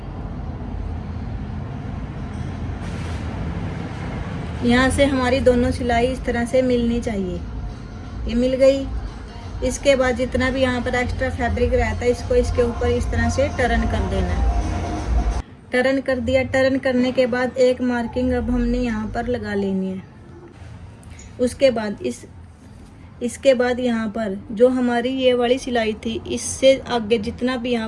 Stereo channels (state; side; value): identical; both; correlation 1.00